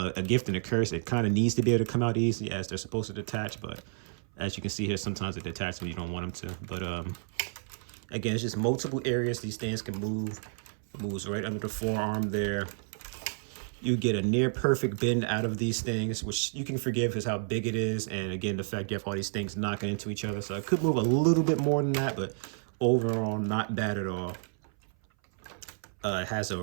gift and a curse. It kind of needs to be able to come out easy as they're supposed to detach, but as you can see here, sometimes they detach when you don't want them to. But again, it's just multiple areas these things can move. It moves right under the forearm there. You get a near perfect bend out of these things, which you can forgive because how big it is. And again, the fact you have all these things knocking into each other. So it could move a little bit more than that, but overall, not bad at all. It has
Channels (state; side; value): silent; left; 57 dB below the other